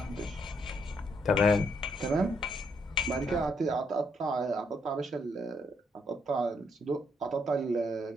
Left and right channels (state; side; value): normal; both; correlation 0.73